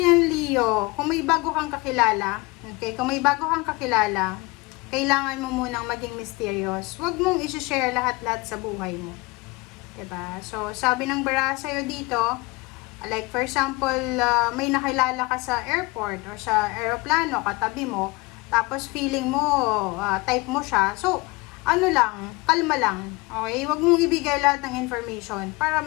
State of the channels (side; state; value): right; quieter; 24.2 dB